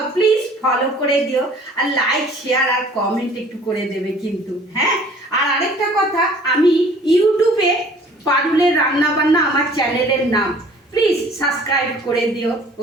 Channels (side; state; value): both; normal; correlation 0.52